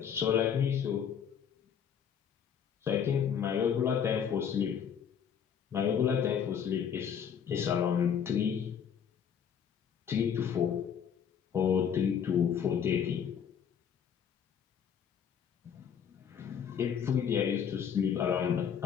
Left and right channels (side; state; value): right; quieter; 7.9 dB